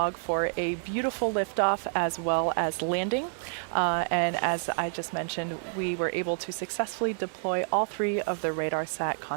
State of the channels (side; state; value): left; silent; 59 dB below the other